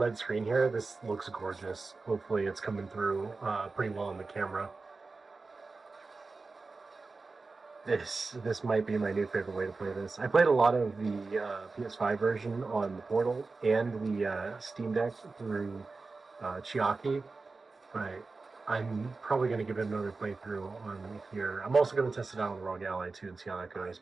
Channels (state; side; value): quieter; left; 3.9 dB